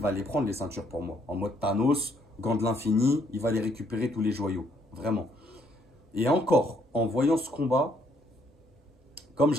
va les prendre les ceintures pour moi. En mode Thanos, gant de l'infini, il va les récupérer tous les joyaux. Vraiment. Et encore, en voyant ce combat, comme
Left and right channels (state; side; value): normal; both; correlation 0.69